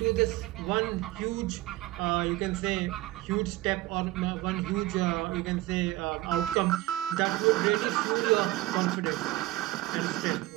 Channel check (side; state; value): left; quieter; 17.7 dB